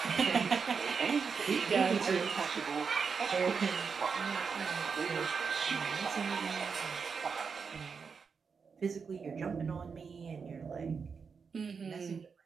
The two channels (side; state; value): left; quieter; 5.6 dB